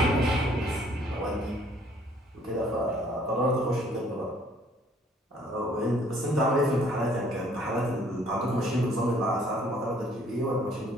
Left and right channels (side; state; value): both; normal; correlation 0.60